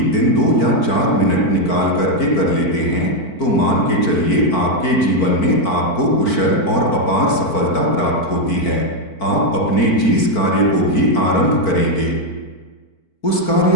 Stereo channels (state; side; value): late; right; 4.5 ms